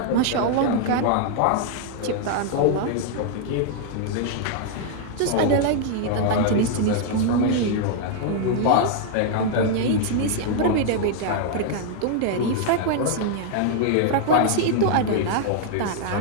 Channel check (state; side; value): different; both; correlation -0.01